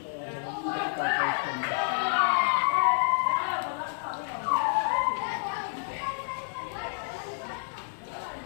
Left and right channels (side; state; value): right; silent; digital silence